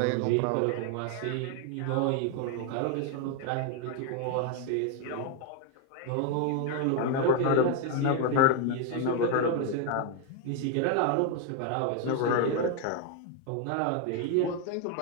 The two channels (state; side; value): different; both; correlation 0.01